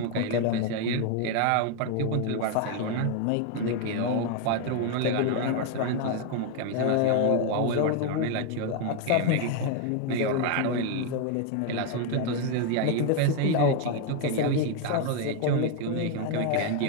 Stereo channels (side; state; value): both; different; correlation 0.01